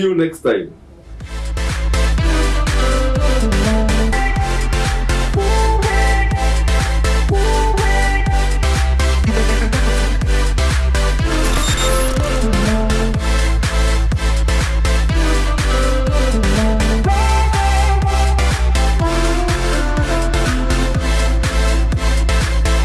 you next time.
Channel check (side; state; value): both; identical; correlation 1.00